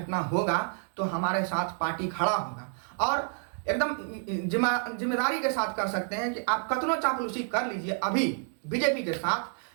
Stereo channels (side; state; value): left; silent; 55 dB below the other